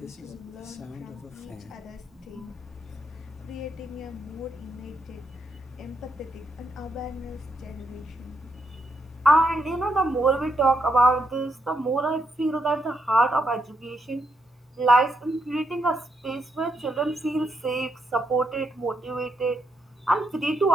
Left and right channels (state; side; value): normal; both; correlation 0.79